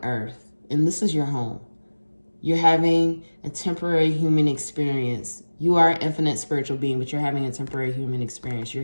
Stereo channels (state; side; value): inverted; both; correlation -1.00